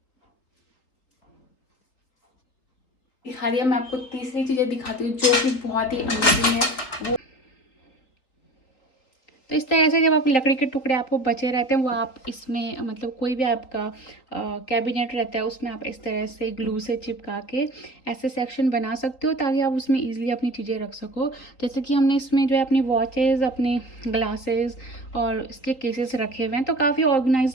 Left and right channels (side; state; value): right; late; 3.9 ms